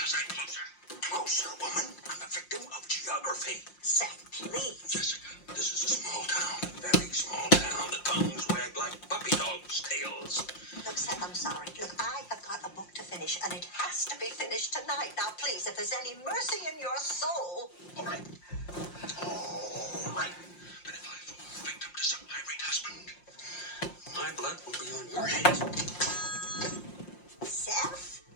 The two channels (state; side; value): late; right; 5.7 ms